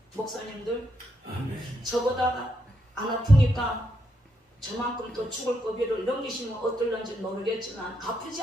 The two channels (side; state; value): both; normal; correlation 0.79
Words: 목사님들 아멘. 저보다가 안 아프니까 저만큼 또 죽을 고비를 넘기시면 어떨런지 모르겠지만 아프지